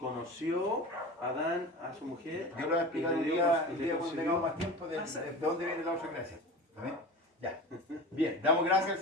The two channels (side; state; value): both; normal; correlation 0.32